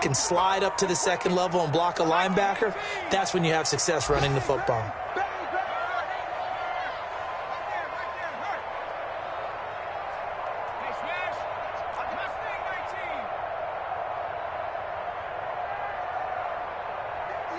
can slide up to the second level and block a linebacker, that's when you have success running the football.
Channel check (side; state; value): both; identical; correlation 1.00